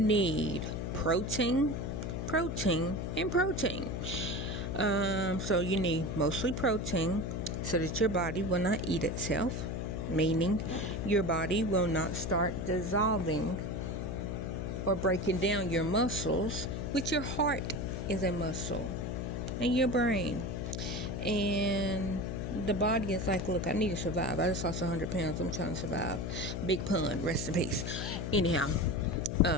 protein, and protein. So you need mostly protein so that your body will not eat itself, meaning your body will not start dissolving or breaking down your muscles, which your heart is a muscle, and your brain. And the body is like, look, I need to survive. I just lost 100 pounds. I'm trying to survive. Big pun. Rest in peace. Anyhow,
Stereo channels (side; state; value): left; noise; hum, 3 dB below the sound